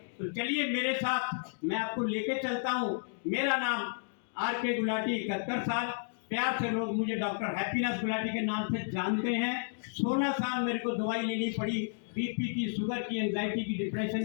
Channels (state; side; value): silent; right; digital silence